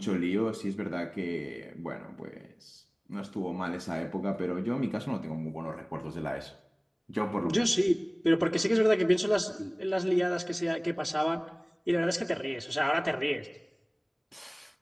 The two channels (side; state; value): both; identical; correlation 1.00